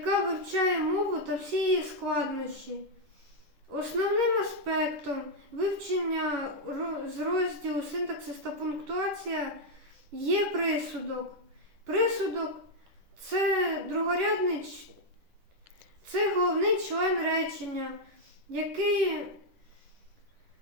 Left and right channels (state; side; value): late; left; 10 ms